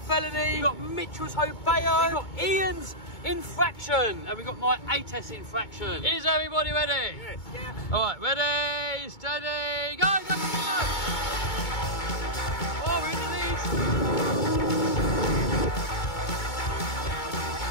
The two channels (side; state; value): right; late; 2.2 ms